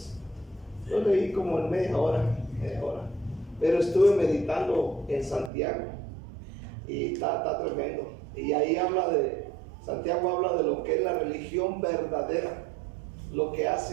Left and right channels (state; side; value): drops out; left; at 5.5 s